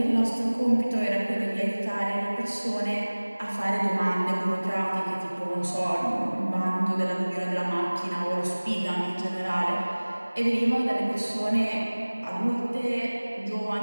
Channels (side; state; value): both; inverted; correlation -1.00